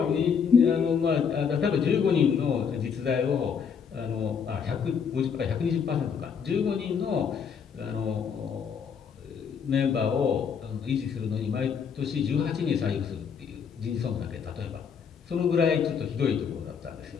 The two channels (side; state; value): right; quieter; 6.7 dB